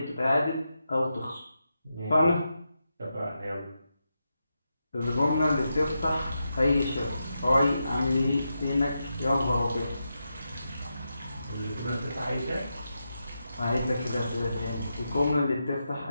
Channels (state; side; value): inverted; both; correlation -0.87